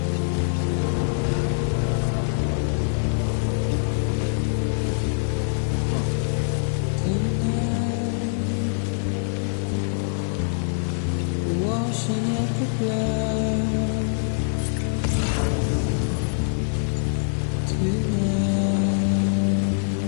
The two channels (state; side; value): silent; right; digital silence